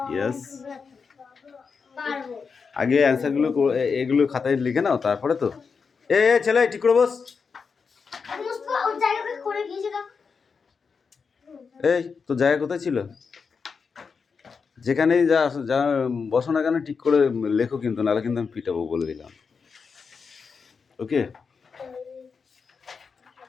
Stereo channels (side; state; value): right; quieter; 5.4 dB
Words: Yes, আগে অ্যান্সারগুলো এগুলো খাতায় লিখে নাও, তারপরে তো ছেলে ঠিক করে বস। এই তো জায়গা কোথায় ছিল? যেখানেই যা বসো না কেন ঠিক করে লেখো, কিন্তু নাহলে কিন্তু আমি পিটাবো, বলে দিলাম। ওকে,